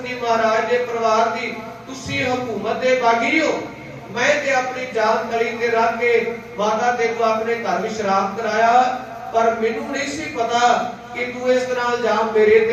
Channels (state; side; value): identical; both; correlation 1.00